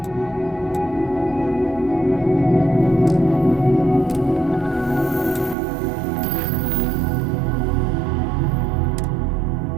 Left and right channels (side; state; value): left; drops out; at 5.6 s